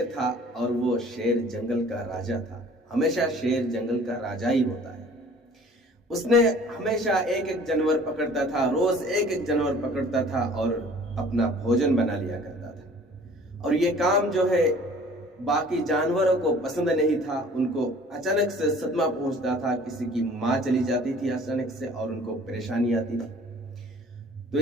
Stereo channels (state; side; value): normal; both; correlation 0.50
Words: था और वो शेर जंगल का राजा था। हमेशा शेर जंगल का राजा ही होता है। उसने हमेशा एक एक जानवर पकड़ता था, रोज एक एक जानवर पकड़ता था और अपना भोजन बना लिया करता था। और ये काम जो है बाकी जानवरों को पसंद नहीं था। उनको अचानक से सदमा पहुंचता था, किसी की माँ चली जाती थी अचानक से और उनको परेशानी आती थी। तो